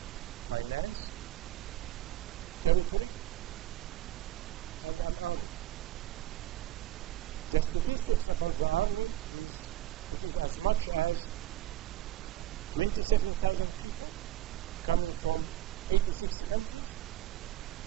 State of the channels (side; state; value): left; quieter; 13.3 dB